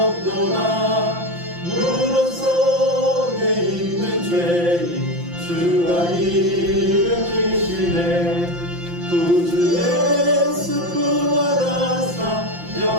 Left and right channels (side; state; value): left; late; 5.8 ms